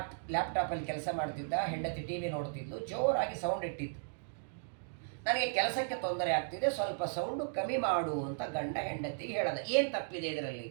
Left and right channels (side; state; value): left; silent; digital silence